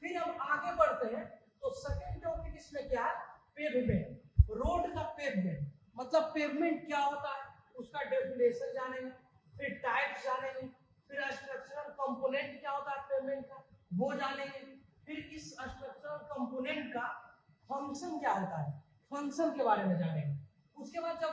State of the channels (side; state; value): both; identical; correlation 1.00